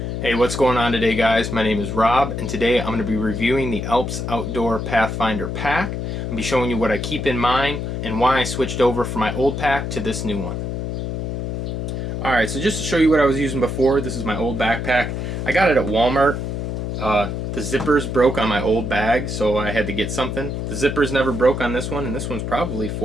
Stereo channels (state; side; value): noise; left; hum, 3 dB below the sound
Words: Hey, what's going on today, guys? My name is Rob, and today I'm going to be reviewing the Alps Outdoor Pathfinder pack. I'm going to be showing you what I keep in mind and why I switched over from my old pack to this new one. Alright, so just to show you what I was using before, this is my old backpack. I got it at Walmart. The zippers broke on my old bag, so I had to get something. The zippers never broke on this one, and this one's probably